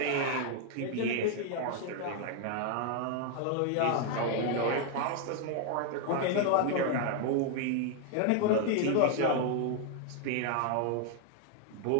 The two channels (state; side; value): different; both; correlation 0.00